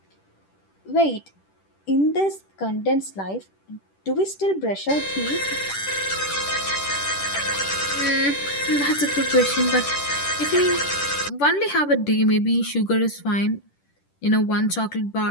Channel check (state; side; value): late; right; 10 ms